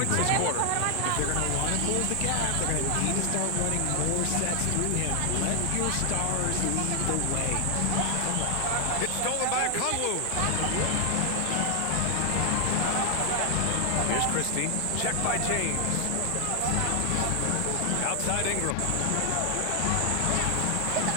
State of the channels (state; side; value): different; both; correlation 0.00